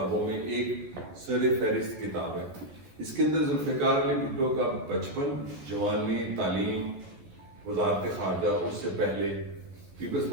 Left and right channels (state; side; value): late; left; 14 ms